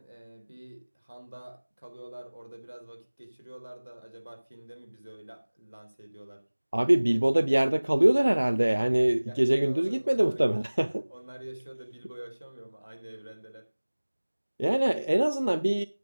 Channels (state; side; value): inverted; both; correlation -1.00